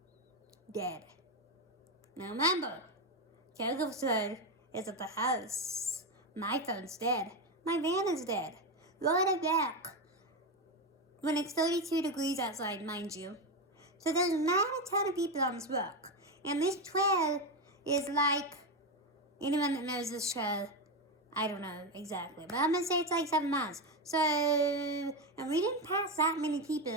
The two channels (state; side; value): normal; both; correlation 0.12